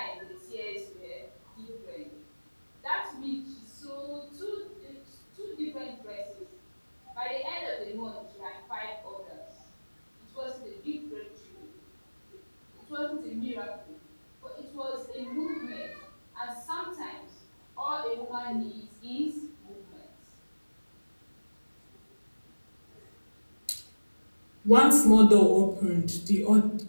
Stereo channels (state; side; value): inverted; both; correlation -1.00